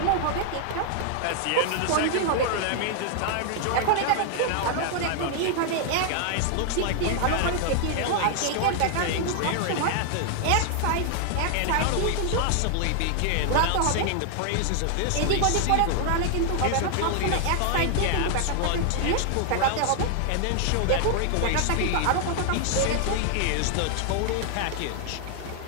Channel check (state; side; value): different; both; correlation 0.00